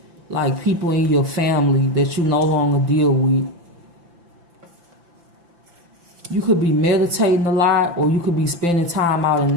like people in your family that you no longer deal with. You could be meditating a lot, or you could be spending time out in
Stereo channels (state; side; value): late; left; 5.8 ms